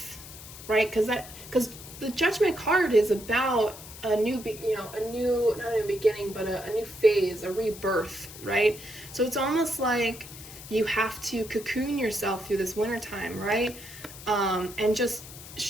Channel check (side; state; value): left; noise; hiss, 15 dB below the sound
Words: right? Because the Judgment card is about a new, not a new beginning, but a new phase, a rebirth, right? So it's almost like you have to cocoon yourself through this wintertime, right? And just